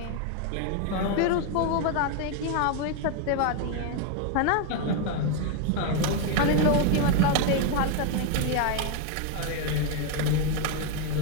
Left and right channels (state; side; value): different; both; correlation 0.01